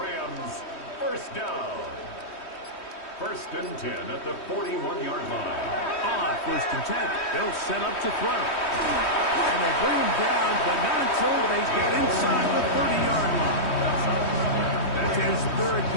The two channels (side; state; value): right; late; 3.1 ms